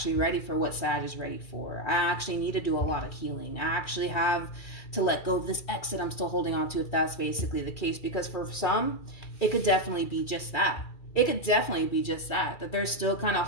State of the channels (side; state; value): right; late; 2.3 ms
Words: ready for what Sag is ready for. I actually need to do a lot of healing. I actually have to let go of this ex that I'm still holding on to, if that's basically the case. Because for some, it could definitely be just that. It could definitely be just that they're still kind of